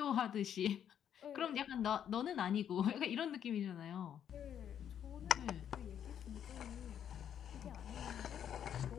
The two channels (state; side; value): quieter; right; 9.2 dB